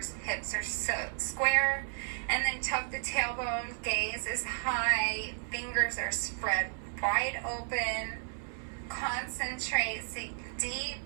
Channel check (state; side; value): silent; left; digital silence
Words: hips are so square, and then tuck the tailbone, gaze is high, fingers are spread wide open. Concentrate, sink deep,